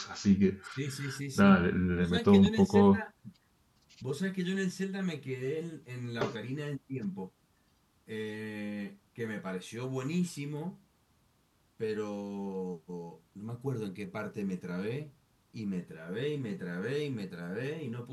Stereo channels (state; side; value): identical; both; correlation 1.00